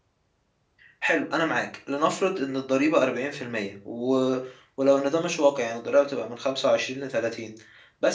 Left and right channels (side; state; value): both; identical; correlation 1.00